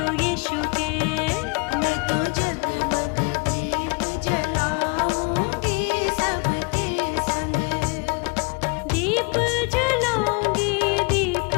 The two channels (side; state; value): right; quieter; 31.4 dB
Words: यीशु के मैं तो जगमग दीप जलाऊंगी सबके संग। दीप जलाऊंगी, दीप